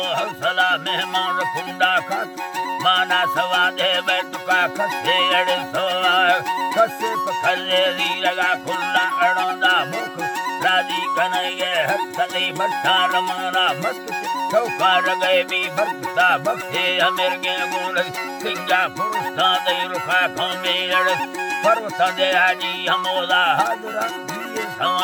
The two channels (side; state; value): both; identical; correlation 1.00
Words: हौसला मेहमान कुंडा खात माना सवा दे बैठका खसे अड़ सोआ खसे पखले दी लगा खुला अड़ोंदा मुख राजी कन्हैया हक सदी भट्टा रमाना मस्त चौकार गए भी भक्ता भक्ते अमीर के गुण सिंगा पुरुषा दे रुखा खमे अड़ पर्वत दे हाजी हमोला हाजरा दिए